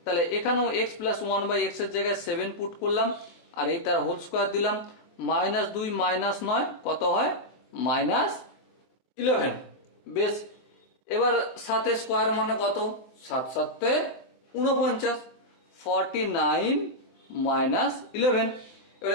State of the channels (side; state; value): right; late; 23 ms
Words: তাহলে এখানেও এক্স প্লাস 1 বাই এক্স এর জায়গায় 7 পুট করলাম, আর এই তার হোল স্কোয়ার দিলাম। মাইনাস 2 মাইনাস 9 কত হয়? মাইনাস 11। বেশ, এবার 7 স্কোয়ার মানে কত? 7 7 49, 49 মাইনাস 11।